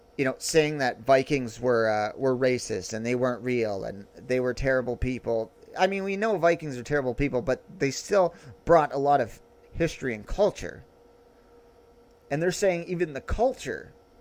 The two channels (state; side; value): identical; both; correlation 1.00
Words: saying that Vikings were racist and they weren't real and they were terrible people. I mean, we know Vikings are terrible people, but they still brought a lot of history and culture. And they're saying even the culture